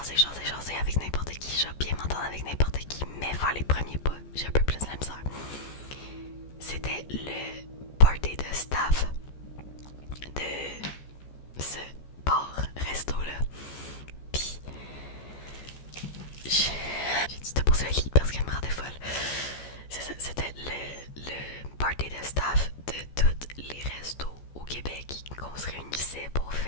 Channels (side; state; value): right; late; 14 ms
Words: avec n'importe qui. Je vais bien m'entendre avec n'importe qui, mais faire les premiers pas, j'ai un peu plus de la misère. C'était le party de staff de ce bar-resto-là. Puis, j'ai dû te poser un lit parce qu'elle me rendait folle. C'est ça, c'était le party de staff de tous les restos au Québec qu'on se réunissait pour